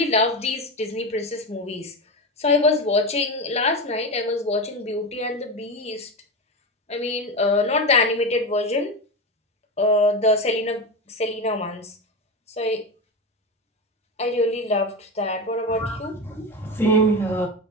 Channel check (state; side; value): normal; both; correlation 0.19